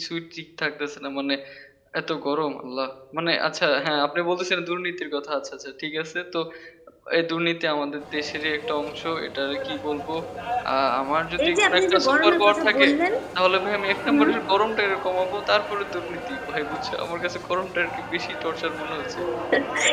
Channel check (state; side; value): identical; both; correlation 1.00